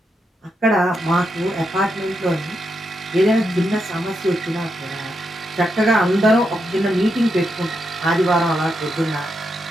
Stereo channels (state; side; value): normal; both; correlation 0.83